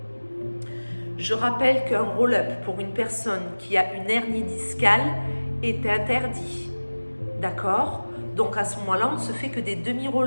Je rappelle qu'un roll-up pour une personne qui a une hernie discale est interdit. D'accord? Donc à ce moment-là, on ne se fait que des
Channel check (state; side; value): inverted; both; correlation -1.00